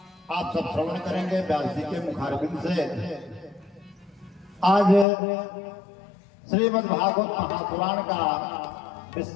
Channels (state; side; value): drops out; right; at 5.1 s